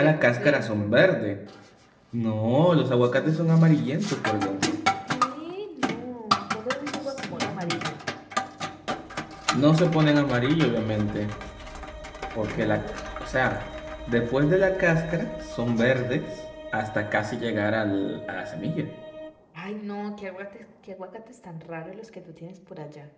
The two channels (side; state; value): both; identical; correlation 1.00